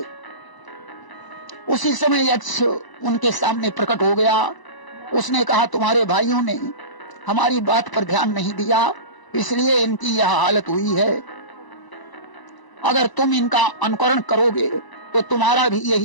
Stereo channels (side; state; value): right; late; 1.0 ms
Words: उसी समय यक्ष उनके सामने प्रकट हो गया। उसने कहा, तुम्हारे भाइयों ने हमारी बात पर ध्यान नहीं दिया, इसलिए इनकी यह हालत हुई है। अगर तुम इनका अनुकरण करोगे तो तुम्हारा भी